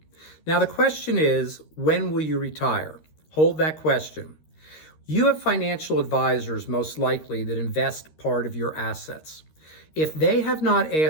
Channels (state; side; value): late; right; 13 ms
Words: Now the question is, when will you retire? Hold that question. You have financial advisors most likely that invest part of your assets. If they have not